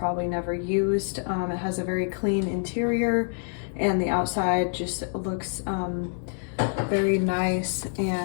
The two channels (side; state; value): right; silent; 55 dB below the other